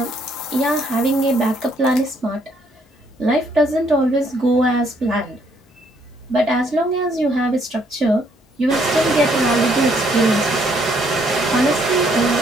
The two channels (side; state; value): both; normal; correlation 0.68